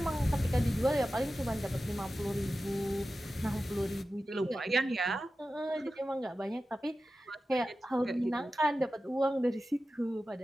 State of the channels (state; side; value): normal; both; correlation 0.94